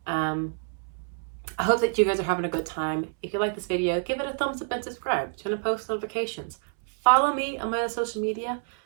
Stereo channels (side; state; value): left; silent; 60 dB below the other